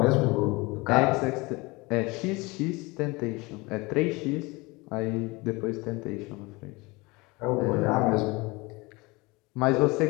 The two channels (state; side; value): quieter; right; 24.3 dB